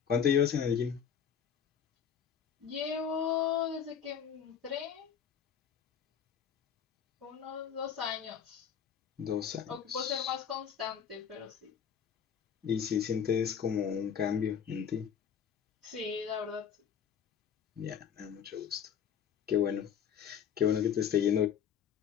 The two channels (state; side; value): quieter; right; 8.0 dB